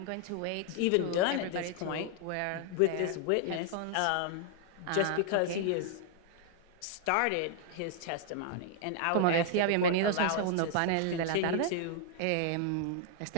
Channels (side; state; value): both; different; correlation 0.00